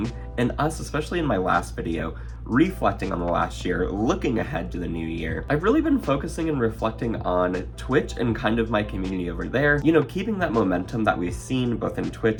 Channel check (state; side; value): identical; both; correlation 1.00